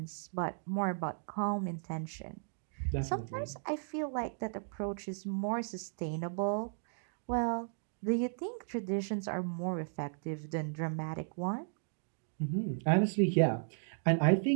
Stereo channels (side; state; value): left; silent; digital silence